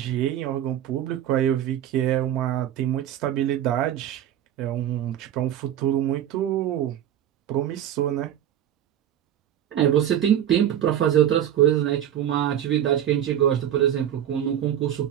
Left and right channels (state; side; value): quieter; left; 10.8 dB